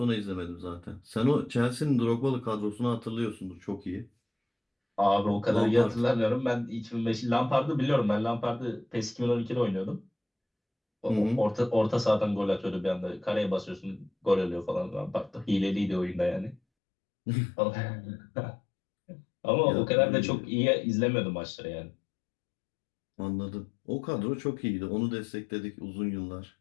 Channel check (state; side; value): drops out; right; at 16.6 s